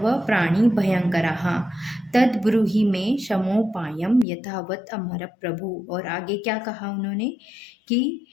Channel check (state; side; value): drops out; right; at 4.2 s